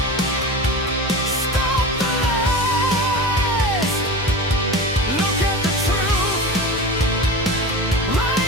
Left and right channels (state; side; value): normal; both; correlation 0.30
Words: stop the lies. Look at the truth